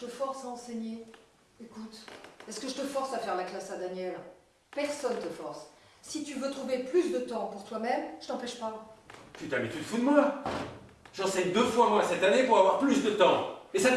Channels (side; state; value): both; identical; correlation 1.00